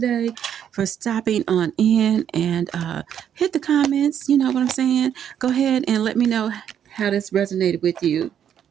for stopping on in and hit the comments. You know what I'm saying? Go ahead and let me know how this resonated with you.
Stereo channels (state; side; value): quieter; left; 9.2 dB